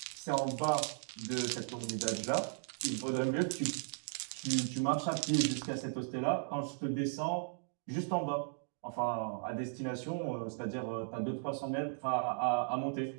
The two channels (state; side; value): silent; left; digital silence